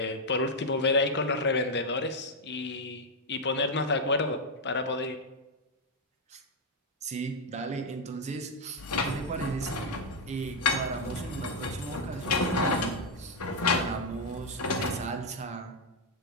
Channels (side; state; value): both; normal; correlation 0.00